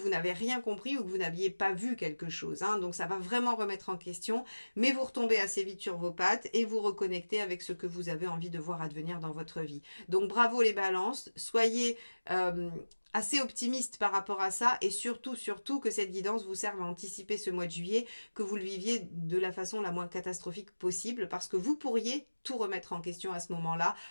n'avez rien compris ou que vous n'aviez pas vu quelque chose. Hein. Donc ça va vraiment remettre en question, mais vous retombez assez vite sur vos pattes et vous reconnectez avec ce que vous avez envie de voir advenir dans votre vie. Donc bravo les balances, soyez assez optimiste par rapport à ça et surtout que cette guidance vous serve à anticiper ce mois de juillet, que vous le viviez de la façon la moins catastrophique possible parce que vous pourriez tout remettre en question à ce moment-là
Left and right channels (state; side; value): inverted; both; correlation -1.00